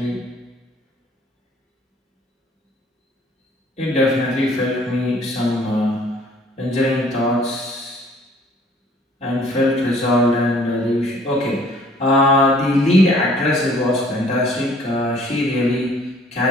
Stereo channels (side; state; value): both; normal; correlation 0.57